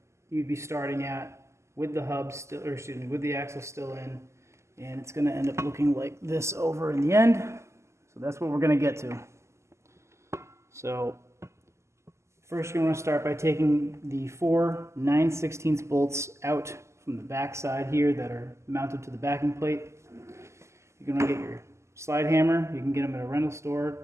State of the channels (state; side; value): late; left; 0.13 ms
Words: you'd be starting at with the hub still, or excuse me, with the axle still in, and it's going to end up looking like this over in the end. So that's what we're going to get to. So first you're going to start by taking the 4 9/16 bolts out from the back side here that are mounted to the backing plate. You're going to get your slide hammer. You can get them at a rental